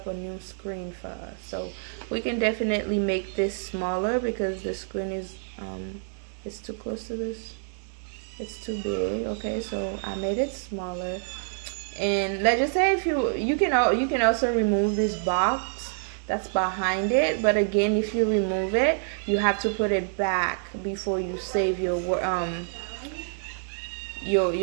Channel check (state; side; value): silent; left; digital silence